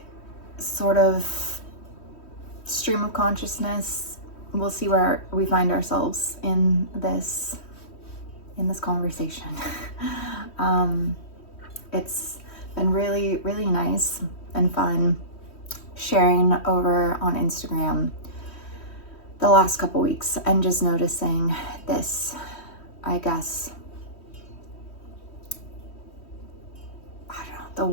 sort of stream of consciousness. We'll see where we find ourselves in this conversation. It's been really, really nice and fun sharing over on Instagram the last couple weeks and just noticing this, I guess, I don't know, the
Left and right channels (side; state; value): right; late; 3.1 ms